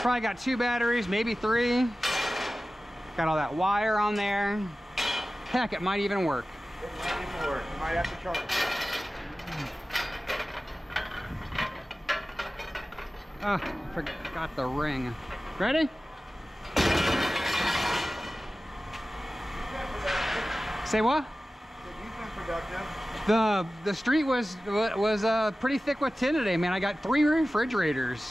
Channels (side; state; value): both; normal; correlation 0.96